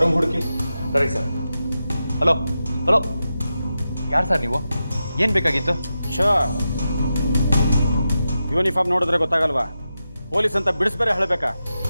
ರೂಮ್ ಹುಡುಕಿ. ಸರಿ ಸರ್. ಹಲೋ ಹಲೋ, ಯಾರು ಸರ್ ನೀವು? ಏನು ಬೇಕಾಗಿತ್ತು? ಯೂನಿಫಾರ್ಮ್ ನೋಡಿದ್ರೆ ಗೊತ್ತಾಗಲ್ವಾ? ಪೊಲೀಸ್ ಅಂತ ಬಿಡಿಸ್ಬೇರೆ ಹೇಳಬೇಕಾ?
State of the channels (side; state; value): both; inverted; correlation -0.90